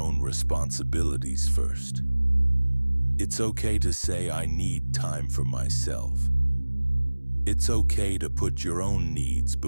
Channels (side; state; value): both; inverted; correlation -1.00